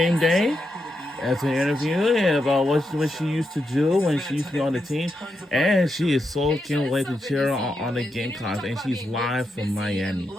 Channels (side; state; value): both; normal; correlation 0.85